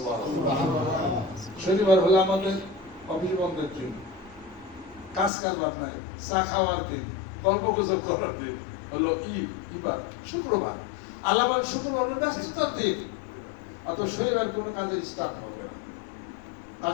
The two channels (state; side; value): drops out; right; at 5.3 s